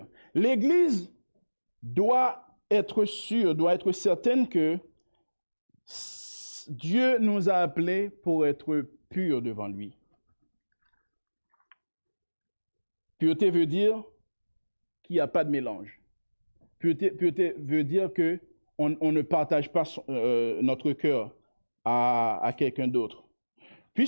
L'église doit être sûre, doit être certaine que Dieu nous a appelés pour être purs devant lui. Pureté veut dire qu'il n'y a pas de mélange. Pureté veut dire qu'on ne partage pas notre cœur à quelqu'un d'autre.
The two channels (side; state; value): both; inverted; correlation -1.00